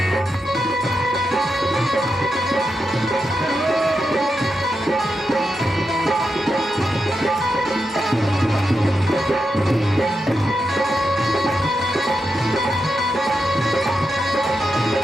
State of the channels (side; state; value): both; normal; correlation 0.87